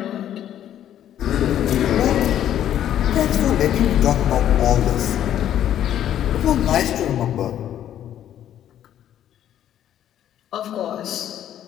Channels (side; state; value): right; quieter; 11.0 dB